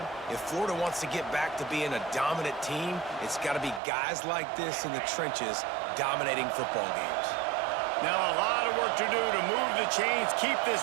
if Florida wants to get back to being a dominant team, it's got to be guys like this in the trenches dominating football games. Now a lot of work to do to move the chains, keep this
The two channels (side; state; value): left; drops out; at 3.8 s